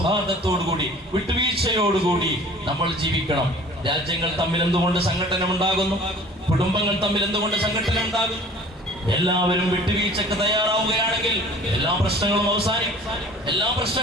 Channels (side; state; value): both; normal; correlation 0.48